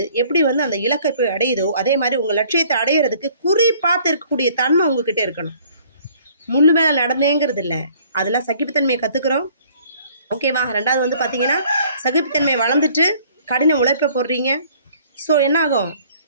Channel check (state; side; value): inverted; both; correlation -0.57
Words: எப்படி அந்த இலக்கை போய் அடையுதோ, அதே மாதிரி உங்கள் லட்சியத்தை அடையிறதுக்கு குறி பார்த்து இருக்கக்கூடிய தன்மை உங்ககிட்ட இருக்கணும். முள்ளு மேலே நடந்தேங்கிறது இல்லை, அதெல்லாம் சகிப்புத்தன்மையை கற்றுக்குறோம். ஓகேவா? 2வது பார்த்தீங்கன்னா, சகிப்புத்தன்மை வளர்ந்துட்டு கடின உழைப்பை போடுறீங்க. ஸோ என்ன ஆகும்,